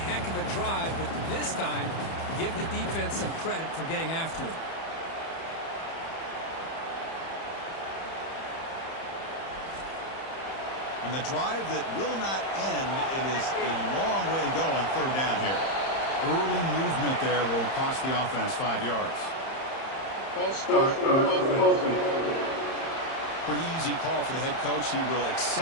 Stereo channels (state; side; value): late; right; 30 ms